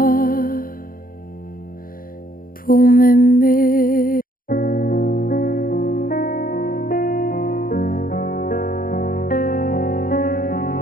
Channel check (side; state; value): right; late; 0.41 ms